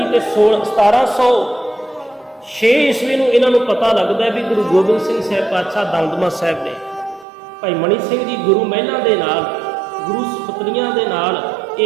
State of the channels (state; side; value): drops out; left; at 7.2 s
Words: ਤੇ 1706 ਈਸਵੀ ਨੂੰ ਇਹਨਾਂ ਨੂੰ ਪਤਾ ਲੱਗਦਾ ਵੀ ਗੁਰੂ ਗੋਬਿੰਦ ਸਿੰਘ ਸਾਹਿਬ ਪਾਤਸ਼ਾਹ ਦਮਦਮਾ ਸਾਹਿਬ ਨੇ। ਭਾਈ ਮਨੀ ਸਿੰਘ ਜੀ ਗੁਰੂ ਮਹਿਲਾਂ ਦੇ ਨਾਲ, ਗੁਰੂ ਸੁਪਤਨੀਆਂ ਦੇ ਨਾਲ